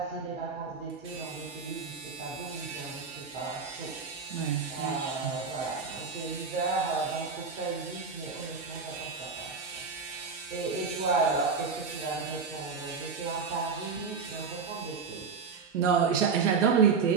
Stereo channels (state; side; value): quieter; left; 5.3 dB